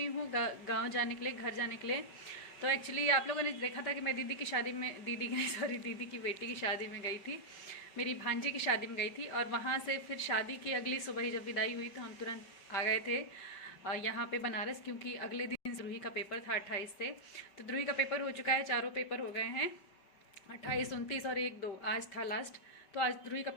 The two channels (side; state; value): right; late; 5.2 ms